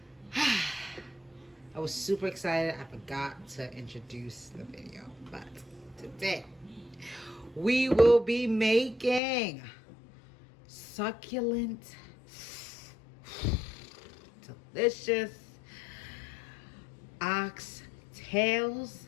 I was super excited. I forgot to introduce the video, but today we will be making succulent, delicious oxtails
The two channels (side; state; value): right; drops out; at 9.2 s